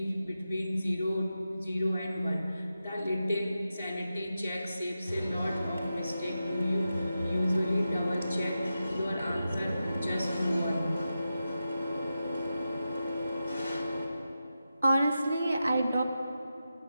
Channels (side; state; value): both; inverted; correlation -0.90